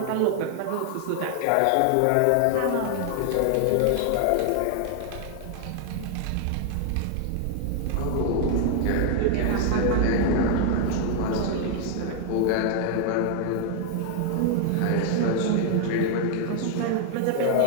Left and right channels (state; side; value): different; both; correlation 0.00